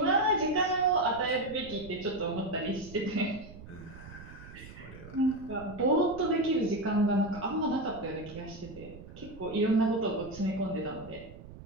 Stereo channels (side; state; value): right; noise; rumble, 16 dB below the sound